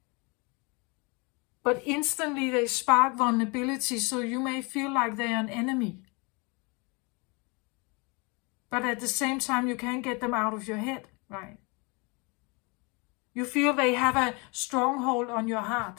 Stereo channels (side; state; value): right; quieter; 29.6 dB